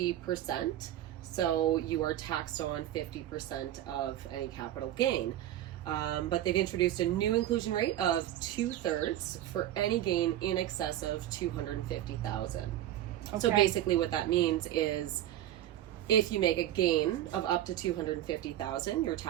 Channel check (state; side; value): quieter; left; 12.7 dB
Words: So you are taxed on 50% of any capital gain. But they've introduced a new inclusion rate of 2/3 for any gain in excess of $250,000. Okay. So basically what that means is if you make a gain of up to $250,000, you're